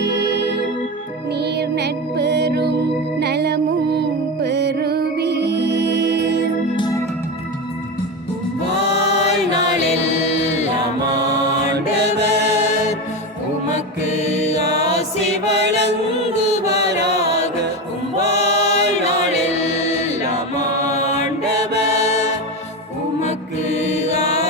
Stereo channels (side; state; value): both; normal; correlation 0.19